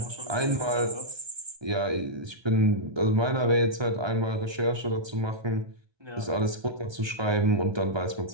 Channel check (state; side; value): late; left; 1.3 ms